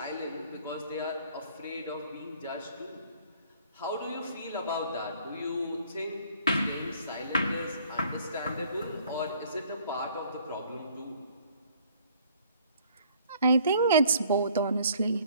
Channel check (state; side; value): inverted; both; correlation -0.57